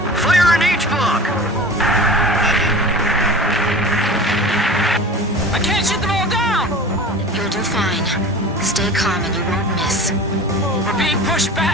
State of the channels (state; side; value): normal; both; correlation 0.36